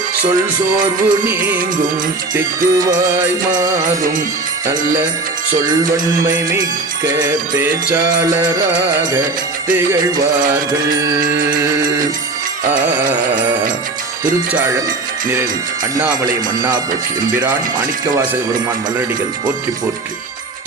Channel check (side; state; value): left; quieter; 3.4 dB